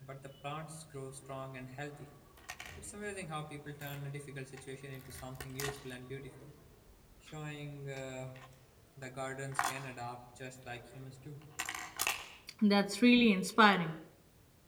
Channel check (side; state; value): both; identical; correlation 1.00